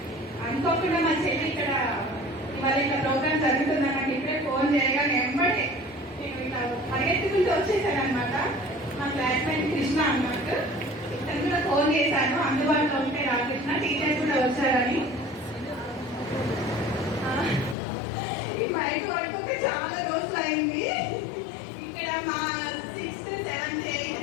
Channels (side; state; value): right; drops out; at 17.8 s